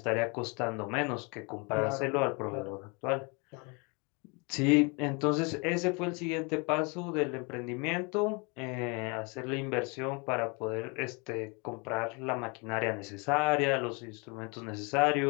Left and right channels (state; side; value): quieter; right; 31.2 dB